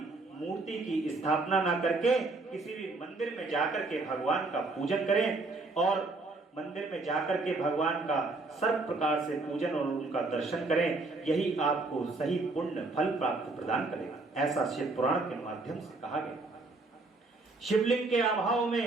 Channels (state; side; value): quieter; left; 3.4 dB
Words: मूर्ति की स्थापना ना करके किसी भी मंदिर में जाकर के भगवान का पूजन करें और मंदिर में जाकर के भगवान का सर्व प्रकार से पूजन और उनका दर्शन करें। यही आपको सही पुण्य फल प्राप्त प्रदान करेगा, ऐसा शिव पुराण के माध्यम से कहा गया। शिवलिंग के अभाव